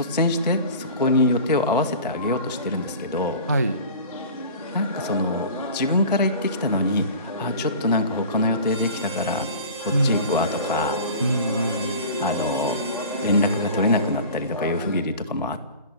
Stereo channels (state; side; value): inverted; both; correlation -0.39